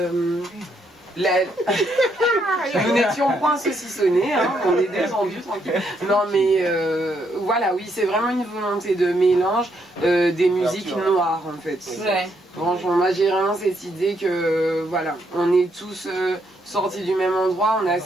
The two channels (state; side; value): normal; both; correlation 0.75